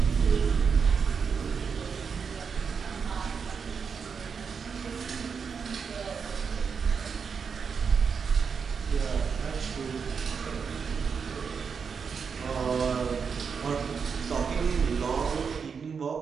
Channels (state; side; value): quieter; left; 6.0 dB